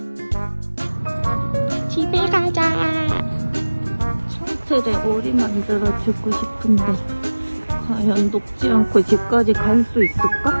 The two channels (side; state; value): both; inverted; correlation -1.00